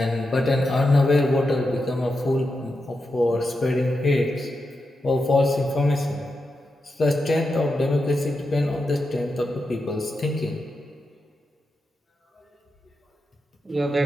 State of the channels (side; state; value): both; normal; correlation 0.88